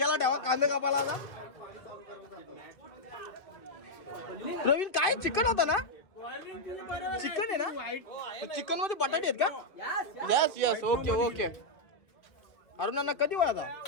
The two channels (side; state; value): right; late; 2.8 ms